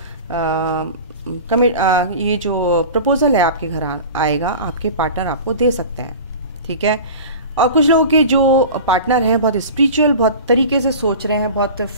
ये जो प्रपोजल है आपके घर आएगा, आपके पार्टनर आपको दे सकते हैं। ठीक है, और कुछ लोगों के जो पार्टनर हैं बहुत स्पिरिचुअल, बहुत तरीके से सोच रहे हैं, बहुत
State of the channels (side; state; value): both; inverted; correlation -0.36